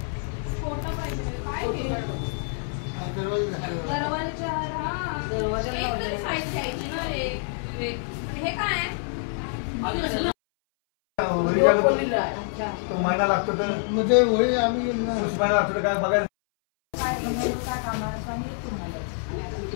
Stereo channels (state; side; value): silent; right; 60 dB below the other